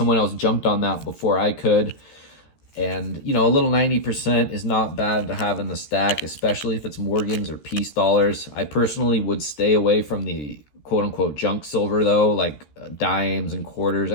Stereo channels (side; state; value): right; late; 13 ms